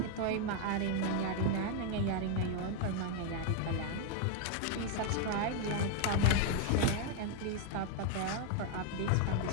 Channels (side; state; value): both; different; correlation 0.00